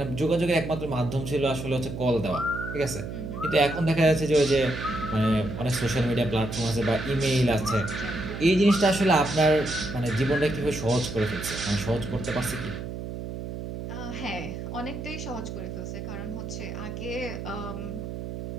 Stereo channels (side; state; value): right; noise; hum, 7 dB below the sound